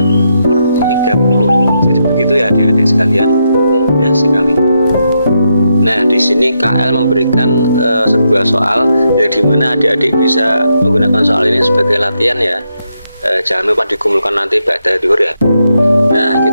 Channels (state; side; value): inverted; both; correlation -0.81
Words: Jadi begitu ya adik-adik sekalian, mudah sekali. Nah, di sini KL memberikan sebuah soal yang dimana adik-adik bisa menggunakan soal ini sebagai latihan ya. Jangan lupa dikumpulkan nanti pada duhur ya. Nah,